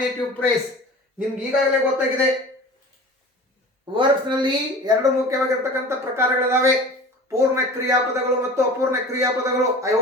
phrase. ನಿಮ್ಗೆ ಈಗಾಗಲೇ ಗೊತ್ತಾಗಿದೆ ವರ್ಬ್ಸ್ ನಲ್ಲಿ 2 ಮುಖ್ಯವಾಗಿರ್ತಕ್ಕಂಥ ಪ್ರಕಾರಗಳಿದಾವೆ, ಪೂರ್ಣ ಕ್ರಿಯಾಪದಗಳು ಮತ್ತು ಅಪೂರ್ಣ ಕ್ರಿಯಾಪದಗಳು. I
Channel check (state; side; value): normal; both; correlation 0.39